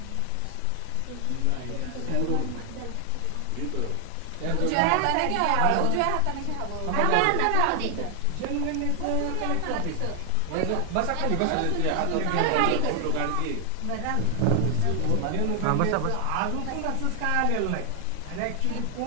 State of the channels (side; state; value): both; different; correlation 0.00